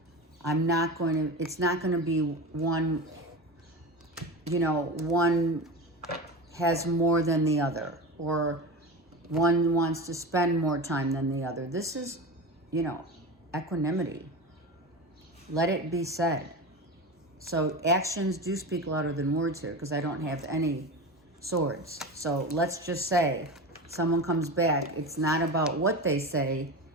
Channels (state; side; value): normal; both; correlation 0.27